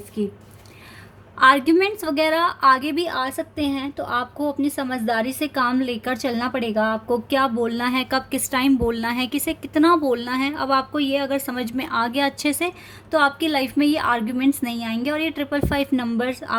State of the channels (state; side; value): identical; both; correlation 1.00